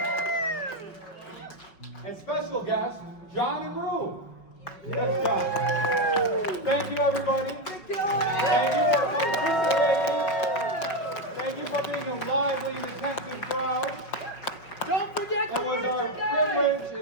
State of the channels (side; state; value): right; late; 5.4 ms